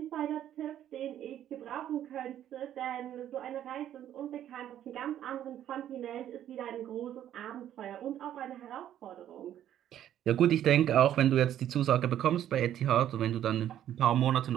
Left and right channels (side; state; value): left; quieter; 11.2 dB